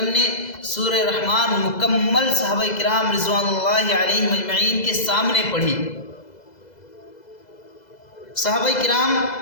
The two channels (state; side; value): late; right; 2.0 ms